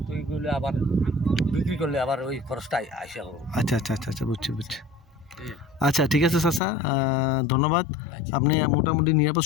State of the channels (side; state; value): right; drops out; at 6.6 s